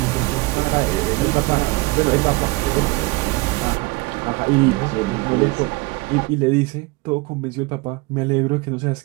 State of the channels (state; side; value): quieter; left; 24.4 dB